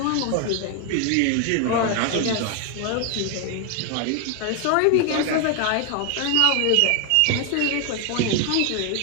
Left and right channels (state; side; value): different; both; correlation 0.00